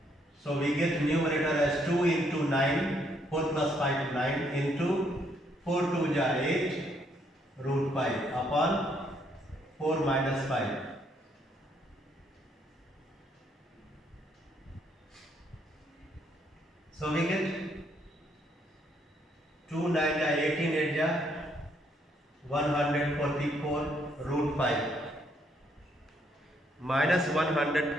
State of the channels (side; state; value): both; normal; correlation 0.71